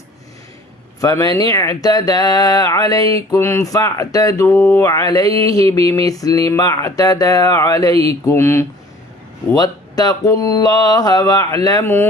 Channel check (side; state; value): both; normal; correlation 0.50